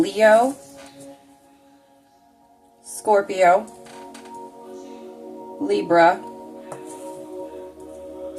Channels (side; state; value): both; identical; correlation 1.00